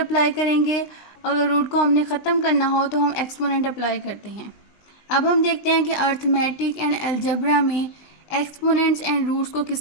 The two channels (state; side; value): late; right; 20 ms